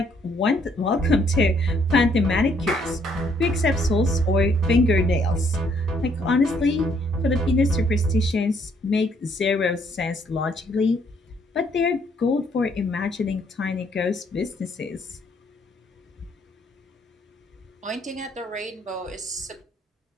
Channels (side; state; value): both; normal; correlation 0.68